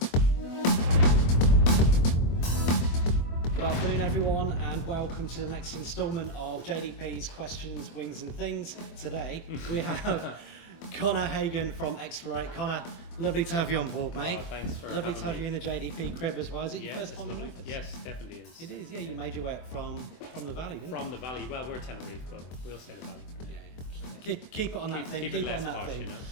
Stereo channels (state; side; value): late; right; 24 ms